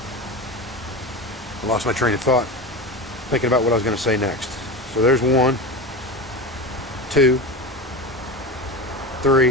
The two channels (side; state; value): both; normal; correlation 0.25